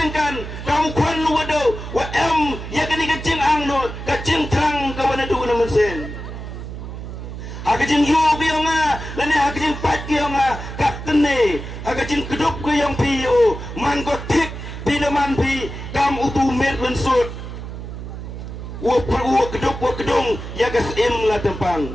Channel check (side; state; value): right; noise; hum, 9 dB below the sound